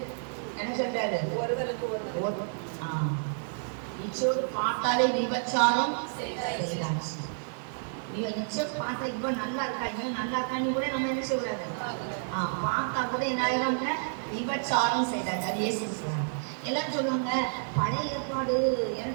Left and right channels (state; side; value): silent; left; 58 dB below the other